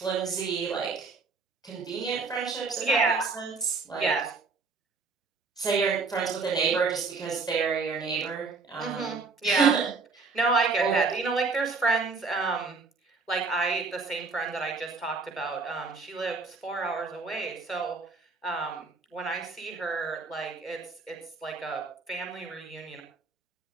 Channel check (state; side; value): quieter; left; 4.3 dB